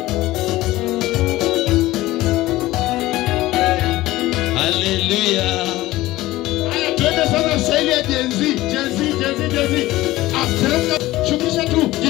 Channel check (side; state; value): right; quieter; 17.4 dB